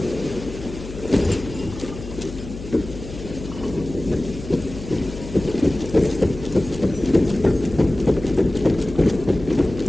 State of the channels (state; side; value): noise; left; hum, 12 dB below the sound